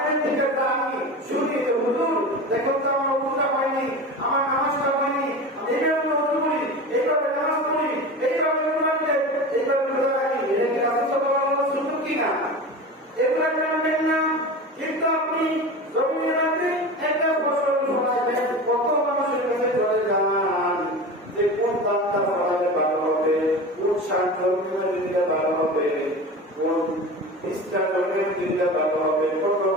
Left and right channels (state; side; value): normal; both; correlation 0.30